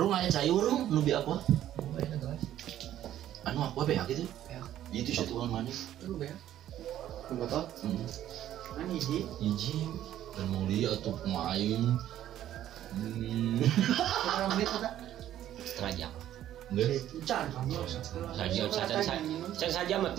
aya cayur rung nu bi apa? Oh, aya gelas. Anu apa beak gitu? Beak. Itu satuan mana? Lu beak. Botol? Kan hiji dan mau lihat tuh pemain. Berapa menit kita? Setengah jam. Enggak. Can kamu. Saja mah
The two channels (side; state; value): left; quieter; 12.1 dB